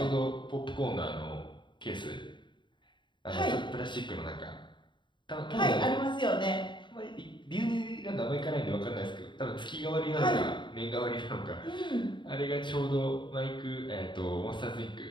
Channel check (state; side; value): late; right; 0.23 ms